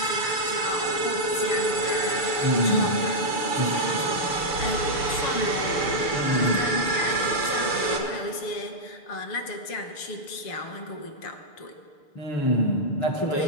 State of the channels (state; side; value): late; right; 6.7 ms